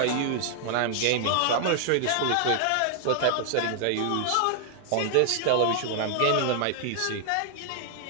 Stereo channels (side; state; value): both; different; correlation 0.00